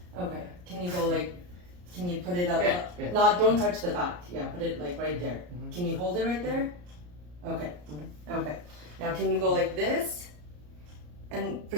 Okay. Can you go like? Can you put it up? Yeah. Yeah. Not. Don't touch the back. Yeah. Put it like right there. Mhm. Can you hold it right there? Okay. Okay. Now can you go like this? And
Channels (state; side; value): late; left; 34 ms